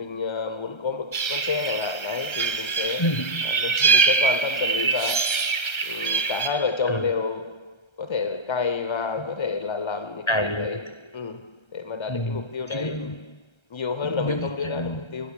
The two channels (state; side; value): late; right; 1.3 ms